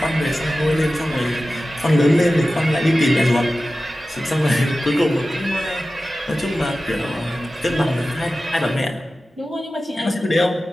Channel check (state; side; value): normal; both; correlation 0.95